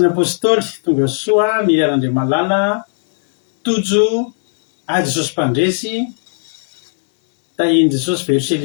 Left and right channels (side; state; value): right; silent; digital silence